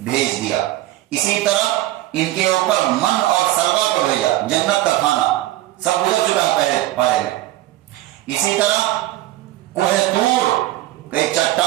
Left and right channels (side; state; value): left; quieter; 16.1 dB